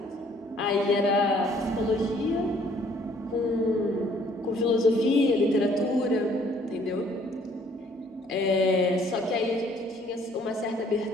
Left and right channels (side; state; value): both; normal; correlation 0.61